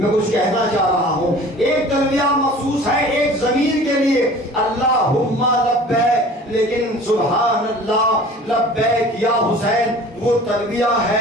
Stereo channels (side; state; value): both; normal; correlation 0.44